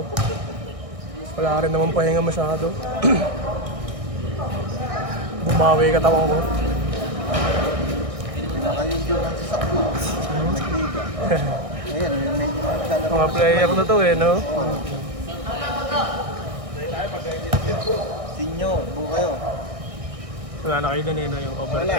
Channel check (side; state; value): left; late; 1.6 ms